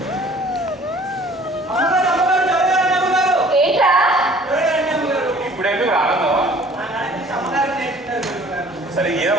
ఏంట్రా? ఇప్పుడు ఎందుకు ఆనందం? సరే ఏదో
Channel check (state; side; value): normal; both; correlation 0.52